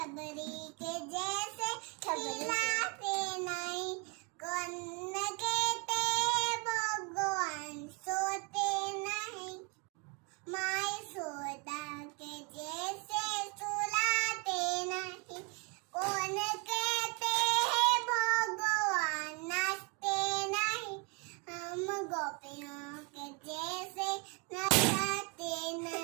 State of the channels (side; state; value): left; quieter; 33.3 dB